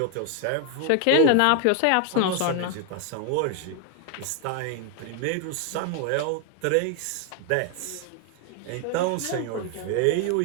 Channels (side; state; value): both; different; correlation 0.00